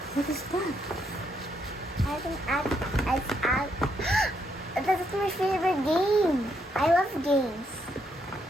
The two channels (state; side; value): normal; both; correlation 0.76